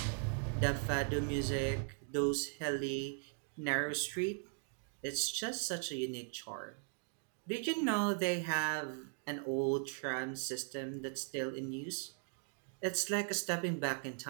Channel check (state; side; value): silent; left; 52 dB below the other